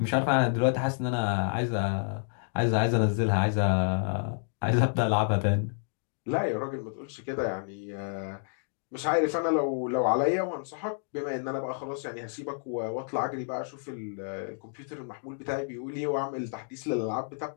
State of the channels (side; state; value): right; silent; digital silence